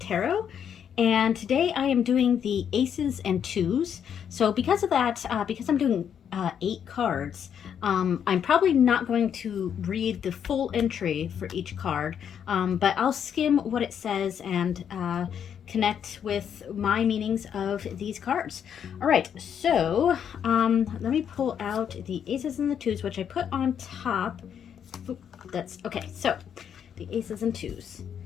Tarot. And today I am doing the aces and twos. So because of that, because I'm doing 8 cards, I'm probably not going to read the full entry for each card, but I'll skim what it says and connect with my meanings of these cards. All right, so let me pull out the aces and the twos, which I put on top. Oop, that's okay. So the aces and twos.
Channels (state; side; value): quieter; right; 8.4 dB